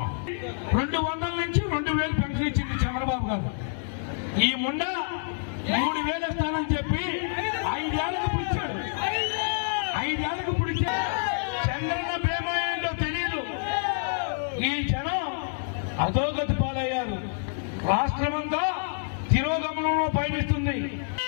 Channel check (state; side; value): silent; right; digital silence